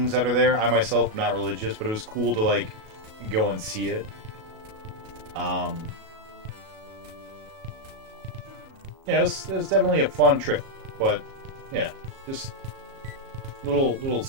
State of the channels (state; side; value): late; left; 37 ms